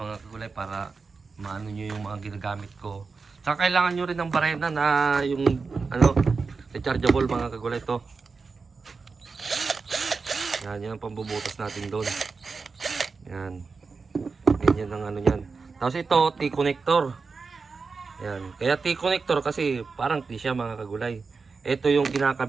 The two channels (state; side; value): quieter; left; 4.6 dB